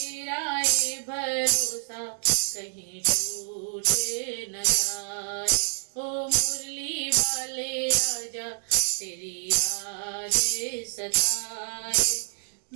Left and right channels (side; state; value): left; silent; digital silence